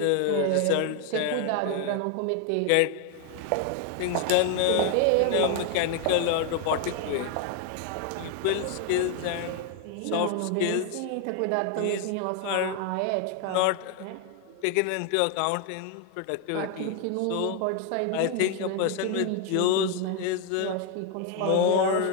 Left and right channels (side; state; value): both; different; correlation 0.01